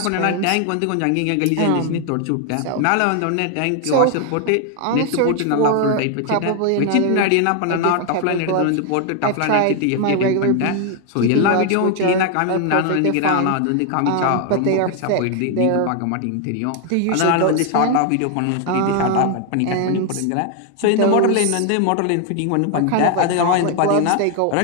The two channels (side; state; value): both; different; correlation 0.00